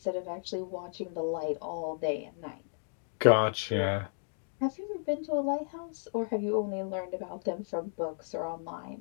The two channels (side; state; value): right; silent; digital silence